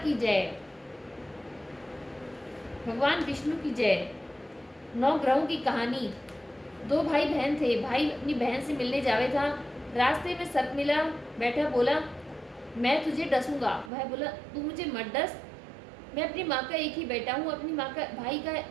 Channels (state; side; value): drops out; left; at 13.9 s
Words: जय, भगवान विष्णु की जय। 9 ग्रहों की कहानी। 2 भाई बहन थे। भाई अपनी बहन से मिलने जावे था। रास्ते में सर्प मिला, बैठा बोला मैं तुझे डसूंगा। वह बोला तू मुझे मत डस, मैं अपनी माँ का एक ही बेटा हूँ, अपनी माँ का भाई का